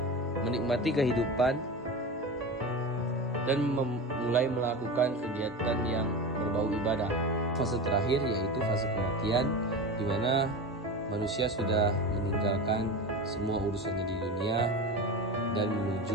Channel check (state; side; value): normal; both; correlation 0.26